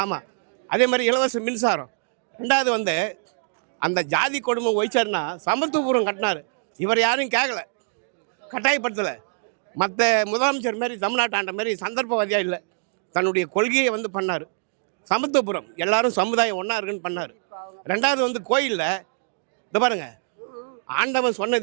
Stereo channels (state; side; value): silent; left; digital silence